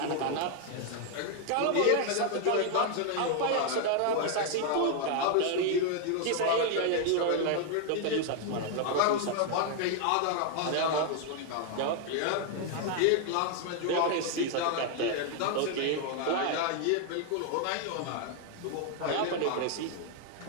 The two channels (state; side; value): different; both; correlation 0.00